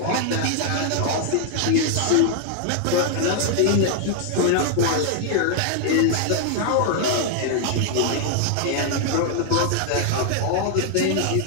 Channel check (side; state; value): both; different; correlation 0.00